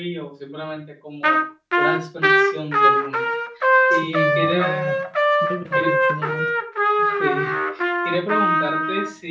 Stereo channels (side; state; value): both; identical; correlation 1.00